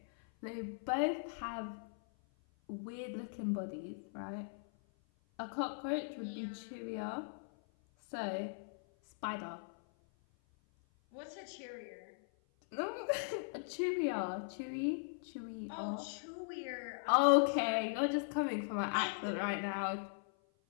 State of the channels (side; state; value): right; silent; 52 dB below the other